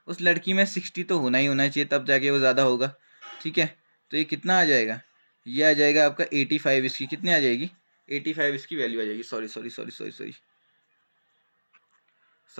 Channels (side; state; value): both; inverted; correlation -1.00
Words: उस लड़की में 60 तो होना ही होना चाहिए, तब जाके वो ज़्यादा होगा। ठीक है, तो ये कितना आ जाएगा, ये आ जाएगा आपका 85। इसकी कितनी आ जाएगी, 85 इसकी वैल्यू आ जाएगी।